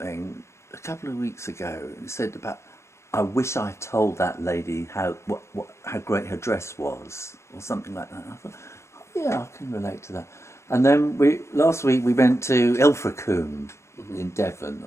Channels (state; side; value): late; right; 0.13 ms